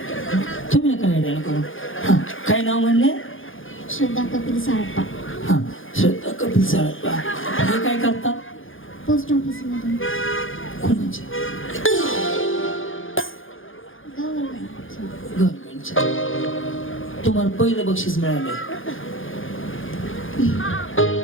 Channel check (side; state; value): right; late; 0.58 ms